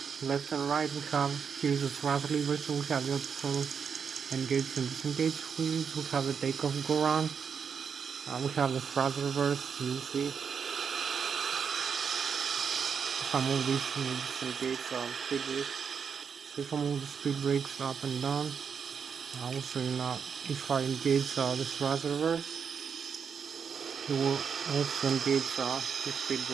left and right. We have here's the thrust lever, so we have the auto throttle engage and disengage wheels. We have the takeoff go round. We have the thrust reverse. You see if I move this disengage speed brakes. So if I move the speed brakes up and down, I will show you now. If I engage the thrust reverse, you will also engage the speed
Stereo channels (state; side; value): quieter; left; 6.6 dB